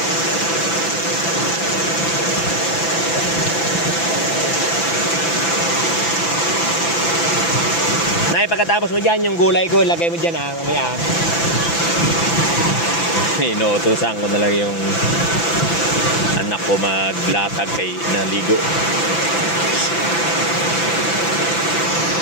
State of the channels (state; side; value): late; right; 6.0 ms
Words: Nay, pagkatapos mo dyan, yung gulay ko, lagay mo dyan mamaya. Inuutusan ko na lang yung anak ko maglatag kay naligo.